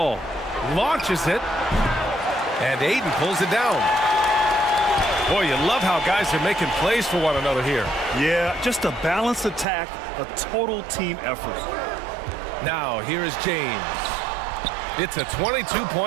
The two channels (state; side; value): drops out; left; at 9.7 s